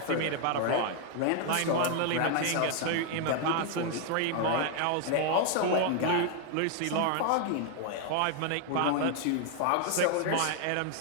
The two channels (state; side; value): different; both; correlation 0.00